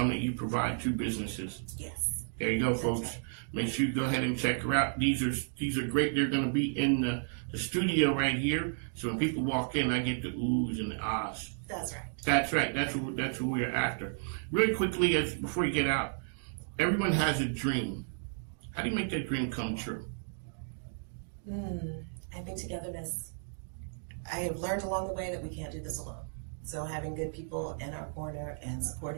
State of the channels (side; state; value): left; silent; digital silence